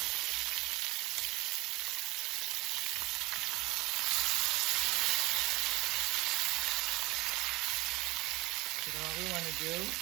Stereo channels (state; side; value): quieter; left; 21.5 dB